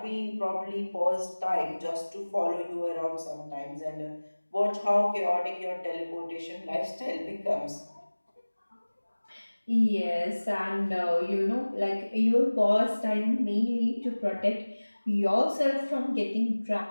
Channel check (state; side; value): inverted; both; correlation -1.00